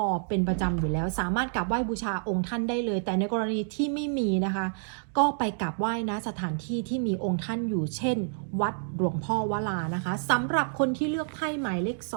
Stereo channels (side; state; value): left; silent; digital silence